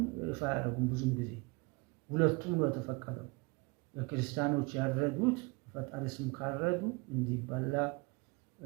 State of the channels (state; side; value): quieter; left; 28.0 dB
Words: ይፋ ያደረጉም ብዙም ጊዜ ሁለቱም ነው የተፈቀደው። የክርስቲያኖች ያረዱት ፈጣሪ ስም ካረዱ እንዲበላ